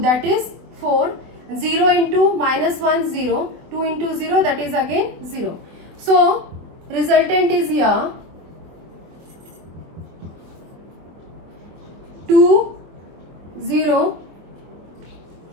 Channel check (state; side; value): late; left; 24 ms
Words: is 4, 0 into minus 1 0, 2 into 0, that is again 0. So resultant is here 2 0